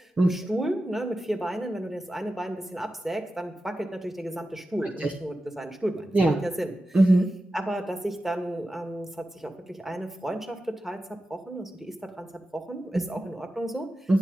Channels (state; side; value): normal; both; correlation 0.92